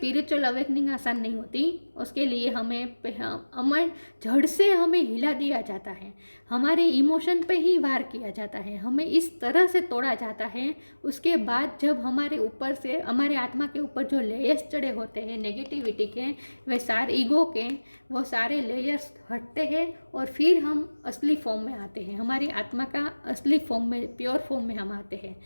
अवेकनिंग आसान नहीं होती। उसके लिए हमें जड़ से हमें हिला दिया जाता है, हमारे इमोशन पे ही वार किया जाता है, हमें इस तरह से तोड़ा जाता है। उसके बाद जब हमारे ऊपर से, हमारे आत्मा के ऊपर जो लेयर्स चढ़े होते हैं नेगेटिविटी के, वे सारे ईगो के, वो सारे लेयर्स हटते हैं और फिर हम असली फॉर्म में आते हैं, हमारी आत्मा का असली फॉर्म में, प्योर फॉर्म में हम आते हैं।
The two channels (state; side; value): inverted; both; correlation -1.00